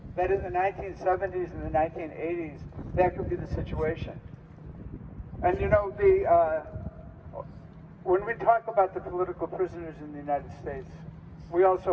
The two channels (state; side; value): identical; both; correlation 1.00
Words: That in the 1970s and the 1980s, that could be the situation. And you know, when we talk about the political prisoners in the United States, we